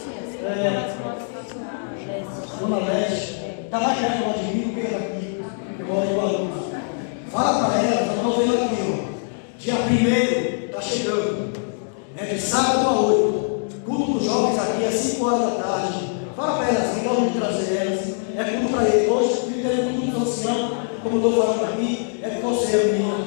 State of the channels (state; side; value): silent; right; digital silence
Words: Dona Leste. Está mais perto de mim do que aqui. Eu moro em Guarulhos. Fala para ela, já estou vendo aqui, ó. Dia 1º está chegando. É de sábado a 8. Culto dos jovens aqui é 5 horas da tarde. Fala para elas, assim, vamos trazer elas. É culto para eles. Hoje, viver culto do ancião, como eu estou falando aqui, é com você, menina.